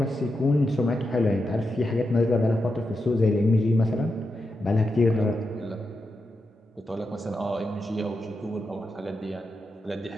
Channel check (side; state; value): both; normal; correlation 0.87